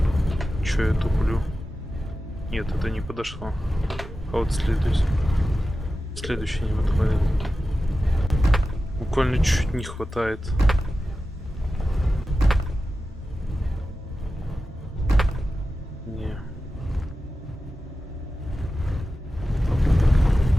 Че я туплю? Нет, это не подошло. А вот следующий не подходит. Буквально чуть-чуть не хватает. Не.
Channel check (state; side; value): normal; both; correlation 0.93